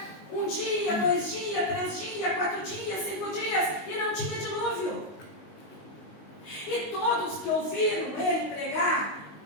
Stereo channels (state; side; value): late; right; 19 ms